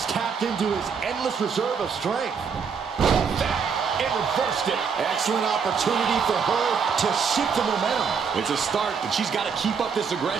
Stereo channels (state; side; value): quieter; left; 6.2 dB